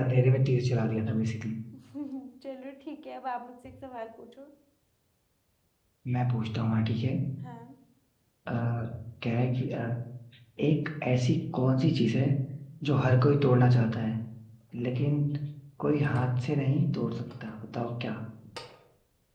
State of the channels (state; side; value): identical; both; correlation 1.00